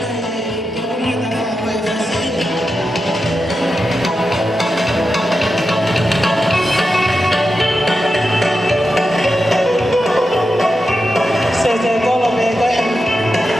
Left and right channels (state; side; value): normal; both; correlation 0.89